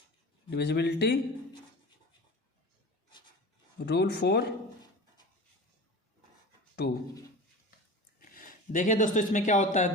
Divisibility rule for 2। देखिए दोस्तों इसमें क्या होता है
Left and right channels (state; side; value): normal; both; correlation 0.33